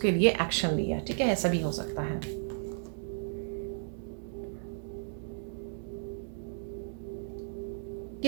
लिए एक्शन लिया। ठीक है, ऐसा भी हो सकता है।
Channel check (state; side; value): silent; left; 55 dB below the other